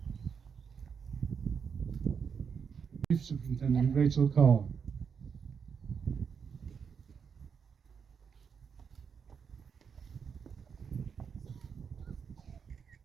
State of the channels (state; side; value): quieter; left; 6.5 dB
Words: Chief Superintendent Rachel Carr.